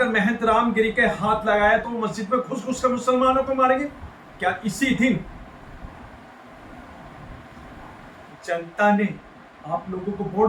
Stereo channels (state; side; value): identical; both; correlation 1.00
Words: महंत रामगिरी के हाथ लगाया तो मस्जिद में घुस घुस कर मुसलमानों को मारेंगे। क्या इसी दिन जनता ने आप लोगों को